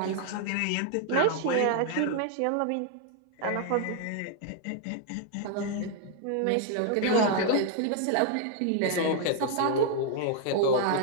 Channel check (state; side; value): different; both; correlation 0.00